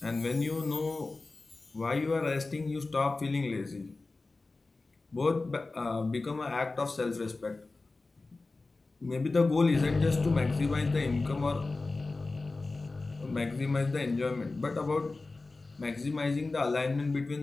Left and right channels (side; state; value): right; quieter; 3.5 dB